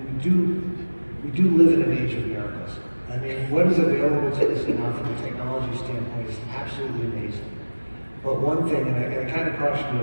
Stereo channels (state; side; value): inverted; both; correlation -1.00